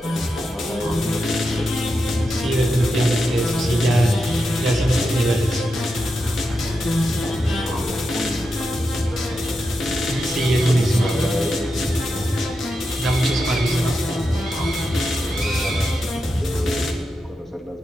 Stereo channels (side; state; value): both; normal; correlation 0.87